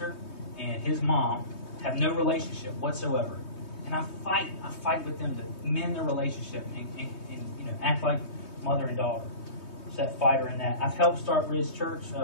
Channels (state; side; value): late; right; 3.2 ms